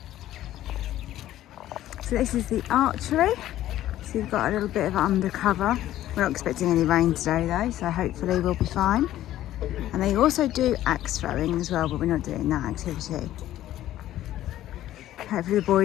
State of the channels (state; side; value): quieter; right; 13.5 dB